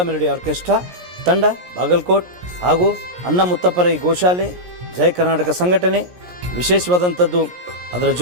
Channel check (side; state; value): left; late; 17 ms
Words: ಮೆಲೋಡಿ ಆರ್ಕೆಸ್ಟ್ರಾ ತಂಡ ಬಾಗಲಕೋಟ್ ಹಾಗೂ ಅನ್ನ ಮುತ್ತಪ್ಪರೈ ಗೋಶಾಲೆ ಜಯ ಕರ್ನಾಟಕ ಸಂಘಟನೆ. ವಿಶೇಷವಾದಂಥದ್ದು ಅದರ